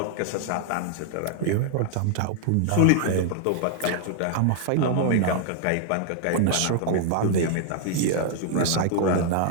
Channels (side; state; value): both; different; correlation 0.00